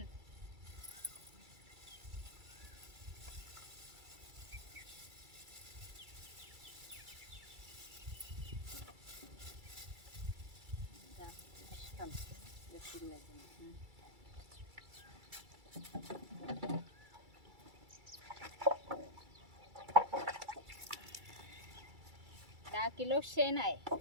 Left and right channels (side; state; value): left; late; 2.3 ms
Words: दहा किलो शेण आहे.